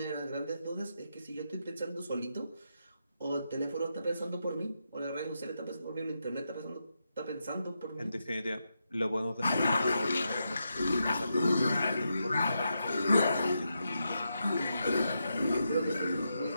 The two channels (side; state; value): both; inverted; correlation -0.85